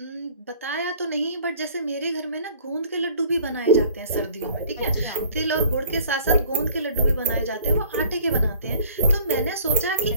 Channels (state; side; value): inverted; both; correlation -0.52